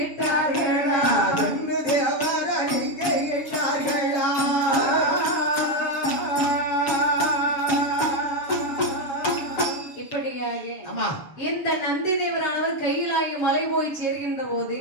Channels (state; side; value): late; right; 7.3 ms